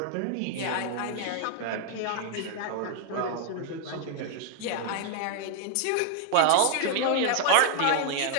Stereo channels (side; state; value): both; different; correlation 0.00